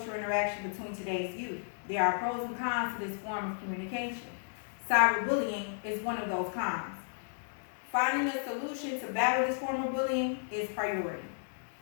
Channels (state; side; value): silent; right; digital silence